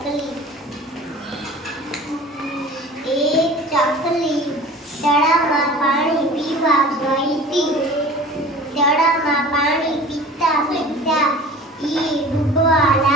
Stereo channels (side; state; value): both; normal; correlation 0.41